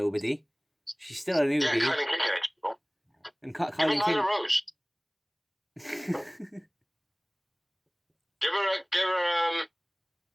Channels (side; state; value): both; identical; correlation 1.00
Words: she's still a newbie. Yeah, Kylan King. And Kylan King. Nyla Rose. give her